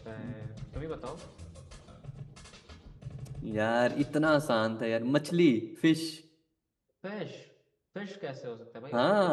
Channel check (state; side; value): identical; both; correlation 1.00